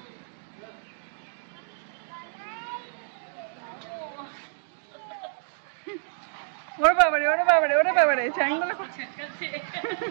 ওরে বাবারে ওরে বাবারে ওরে বাবারে চ্যাংদোলা করছে।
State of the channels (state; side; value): silent; left; digital silence